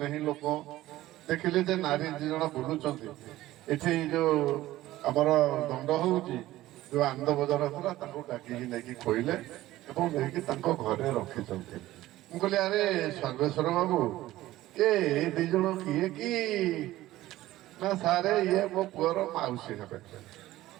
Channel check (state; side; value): quieter; left; 15.9 dB